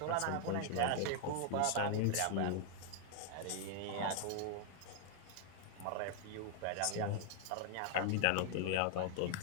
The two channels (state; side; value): different; both; correlation 0.00